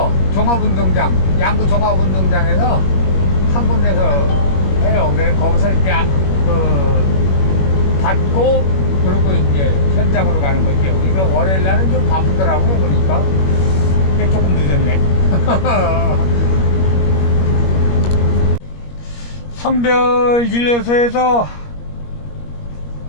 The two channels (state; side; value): late; right; 21 ms